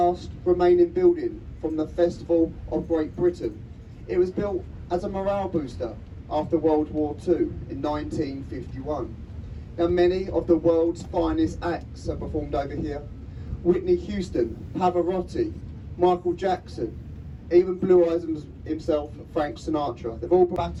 remaining building from the Festival of Great Britain. It was built as a morale booster after World War II in 1951. Now, many of the world's finest acts are performed over here. Whitney Houston, Pavarotti, Michael Jackson, even Blue Eyes himself, Frank Sinatra. They've all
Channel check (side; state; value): both; identical; correlation 1.00